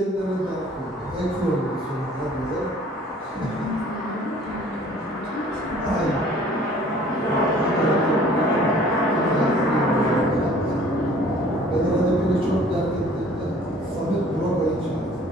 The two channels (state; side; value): normal; both; correlation 0.52